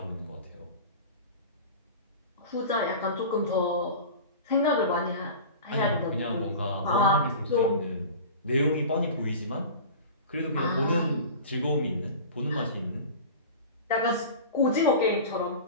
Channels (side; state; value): both; inverted; correlation -0.35